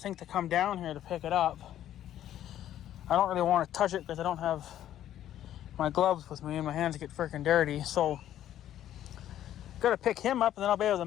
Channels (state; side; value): quieter; right; 11.7 dB